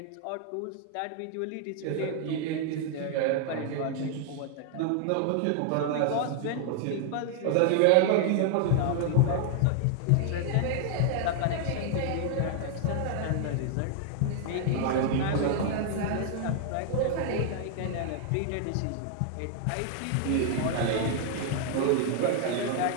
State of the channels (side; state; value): both; different; correlation 0.00